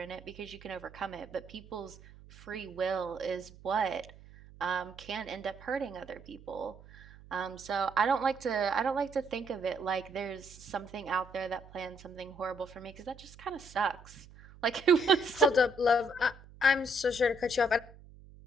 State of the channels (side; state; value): right; noise; hum, 20 dB below the sound